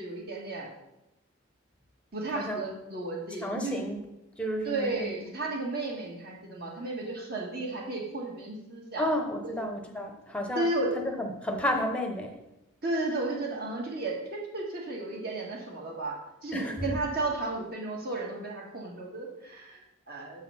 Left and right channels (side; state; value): both; normal; correlation 0.24